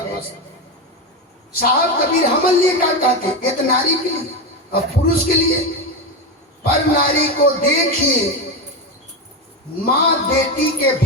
साहब कबीर हमल लिए क्या कहते, ये तो नारी के लिए और पुरुष के लिए। पर नारी को देखिए माँ बेटी के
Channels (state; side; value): normal; both; correlation 0.14